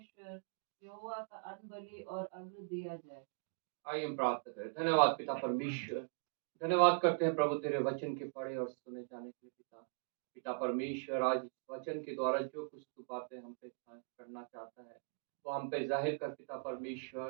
यहोवा का अनबलि और अग्र दिया जाए। आइए हम प्रार्थना करें। धन्यवाद पिता परमेश्वर, धन्यवाद करते हैं प्रभु तेरे वचन के पढ़े और सुने जाने के लिए। पिता परमेश्वर, आज इस वचन के द्वारा जो कुछ तू बातें हम पे करना चाहता है वो हम पे जाहिर कर पिता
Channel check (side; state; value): left; silent; digital silence